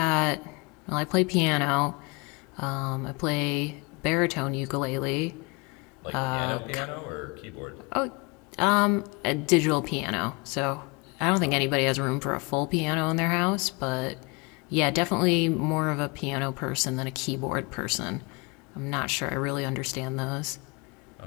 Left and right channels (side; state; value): right; quieter; 28.9 dB